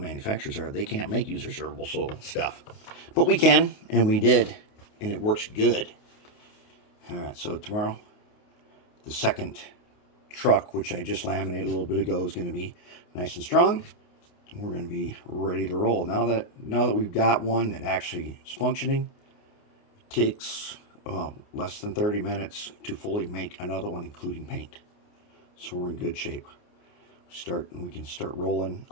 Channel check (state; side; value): late; right; 29 ms